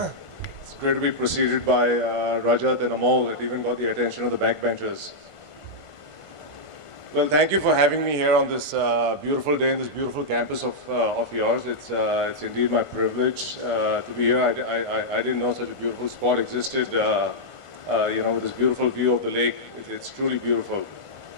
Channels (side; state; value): right; late; 1.5 ms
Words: great to be preceded by Rajat and Amol. It even got the attention of the backbenchers. Well, thank you for having me here on this beautiful day in this beautiful campus of yours. It's indeed my privilege to be here. I didn't know such a beautiful spot existed, with this beautiful view of the lake. It's truly beautiful.